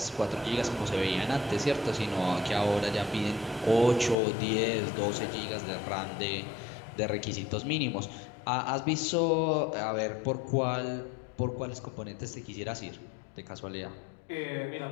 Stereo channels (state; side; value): drops out; right; at 4.2 s